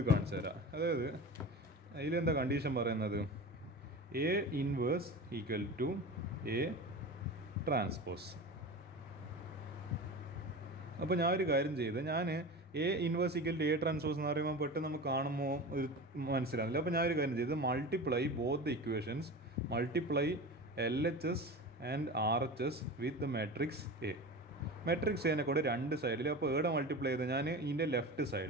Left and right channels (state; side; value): normal; both; correlation 0.31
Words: കാണിച്ചു തരാം. അതായത് അതിലെന്താ കണ്ടീഷൻ പറയുന്നത്, A inverse equal to A transpose. അപ്പോൾ ഞാൻ ഒരു കാര്യം ചെയ്ത്, ഞാൻ A inverse equal to A transpose എന്ന് പറയുമ്പോൾ പെട്ടെന്ന് നമുക്ക് കാണുമ്പോൾ ഒരു മനസ്സിലാവില്ല. അപ്പോൾ ഞാനൊരു കാര്യം ചെയ്ത് multiply both the equations, multiply LHS and RHS with the matrix A. Matrix എനെ കൂടെ 2 സൈഡിൽ. അപ്പോൾ ഏടെ മൾട്ടിപ്ലൈ ചെയ്ത് ഞാൻ ഇതിൻ്റെ ലെഫ്റ്റ്